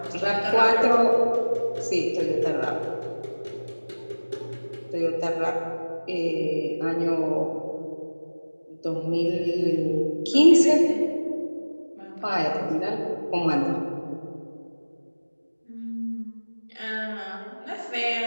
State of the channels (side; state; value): both; inverted; correlation -1.00